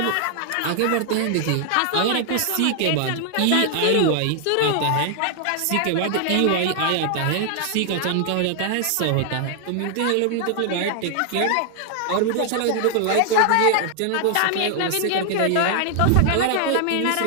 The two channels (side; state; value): both; different; correlation 0.00